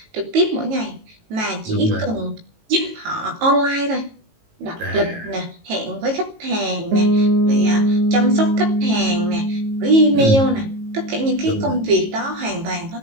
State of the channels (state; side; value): late; left; 18 ms